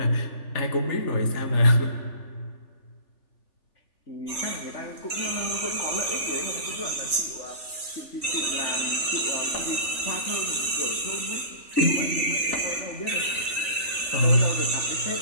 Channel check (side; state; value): right; late; 3.4 ms